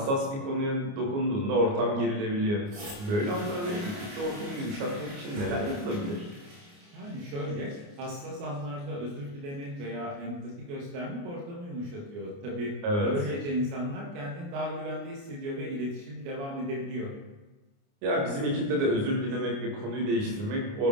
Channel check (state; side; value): late; left; 29 ms